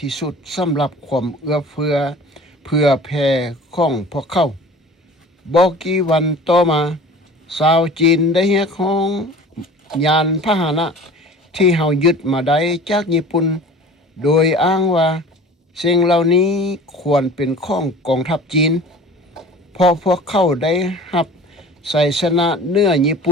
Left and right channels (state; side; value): normal; both; correlation 0.42